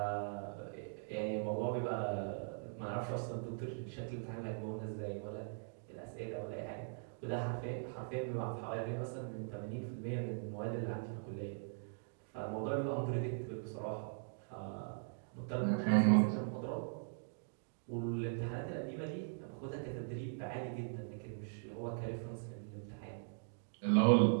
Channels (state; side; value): silent; left; digital silence